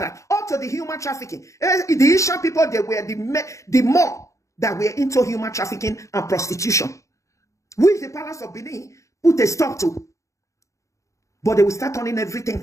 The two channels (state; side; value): late; right; 0.15 ms